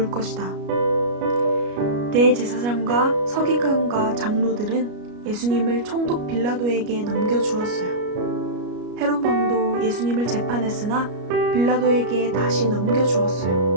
것이다. 대제사장과 서기관과 장로들은 예수님을 총독 빌라도에게 넘겨주었어요. 헤롯 왕도 예수님을 재판했으나 빌라도에게 다시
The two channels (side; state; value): left; late; 33 ms